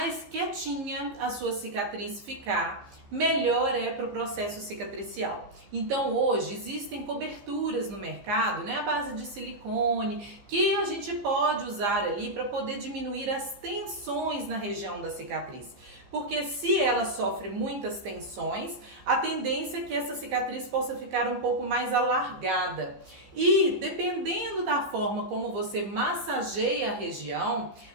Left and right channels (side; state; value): left; late; 15 ms